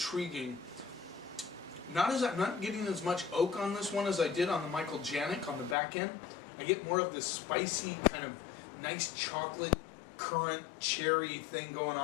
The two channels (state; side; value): drops out; right; at 5.8 s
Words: I'm not getting as much oak on this one as I did on the Michael Janik on the back end. I get more of this spicy kind of nice chocolate currant cherry thing going